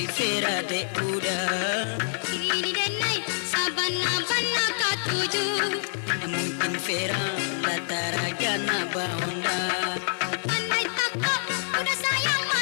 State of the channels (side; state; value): right; silent; 61 dB below the other